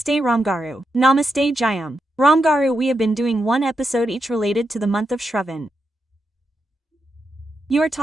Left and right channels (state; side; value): normal; both; correlation 0.85